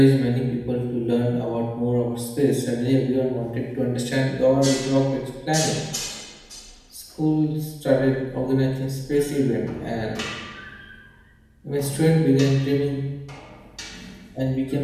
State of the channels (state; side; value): identical; both; correlation 1.00